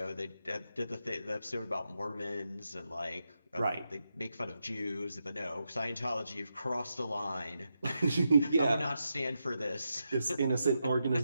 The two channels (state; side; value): inverted; both; correlation -0.85